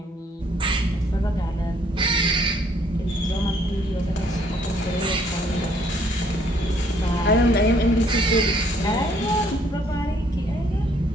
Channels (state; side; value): normal; both; correlation 0.65